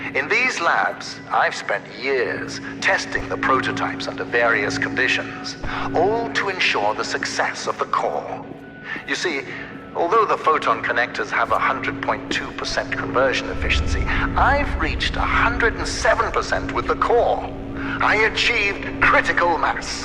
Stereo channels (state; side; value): identical; both; correlation 1.00